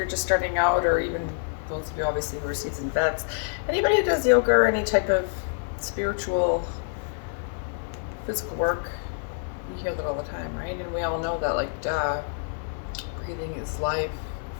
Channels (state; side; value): silent; right; digital silence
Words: just starting out, or even those of you obviously who are seasoned vets, anybody who does yoga or any type of spiritual, physical work, you hear that all the time, right? And we all know that, like, breathing is life.